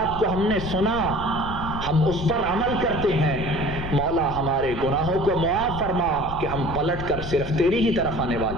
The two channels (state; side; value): noise; left; rumble, 8 dB below the sound